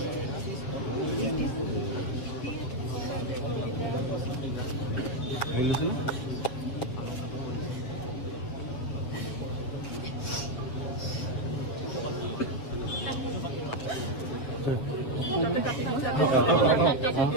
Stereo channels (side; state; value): right; late; 7.8 ms